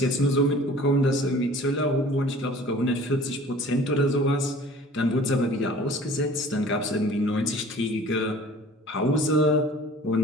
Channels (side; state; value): both; normal; correlation 0.47